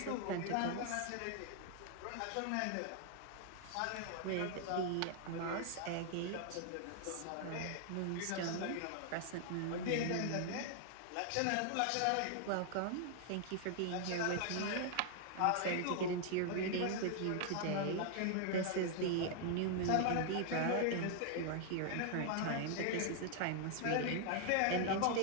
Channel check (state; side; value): different; both; correlation 0.00